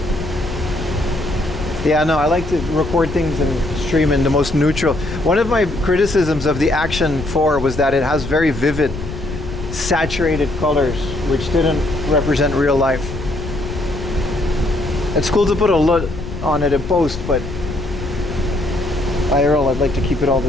Yeah, no, I like to record things and stream in the most neutral. One of my criticisms of the Action 4 was that it has very vivid, saturated colors, which didn't represent real life. It's cool to put a LUT on it in post, but IRL, I'd like to keep it all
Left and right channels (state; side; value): noise; left; rumble, 8 dB below the sound